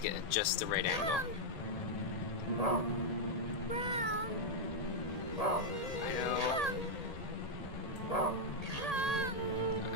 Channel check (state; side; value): late; right; 1.8 ms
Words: get just the right angle. I know.